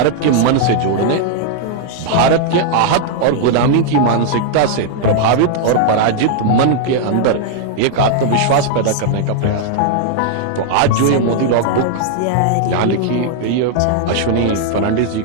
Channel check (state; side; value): different; both; correlation -0.01